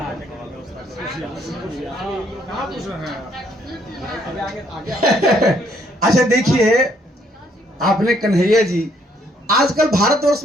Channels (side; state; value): both; normal; correlation 0.68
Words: अच्छा देखिए, आपने कन्हैया जी, आजकल भारतवर्ष